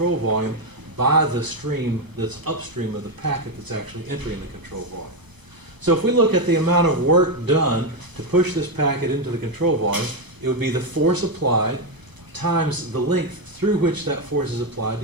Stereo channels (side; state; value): left; late; 1.0 ms